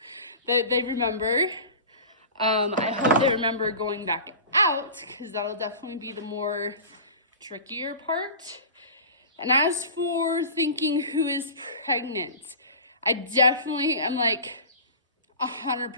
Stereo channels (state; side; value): inverted; both; correlation -0.35